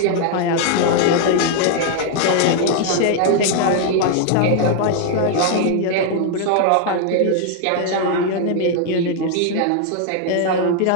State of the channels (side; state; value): both; different; correlation 0.00